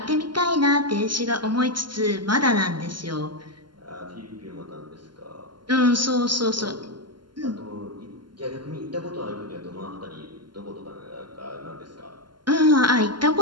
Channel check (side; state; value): left; late; 0.72 ms